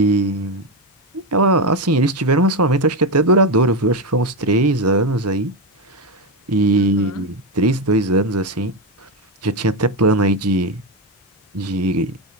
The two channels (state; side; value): normal; both; correlation 0.11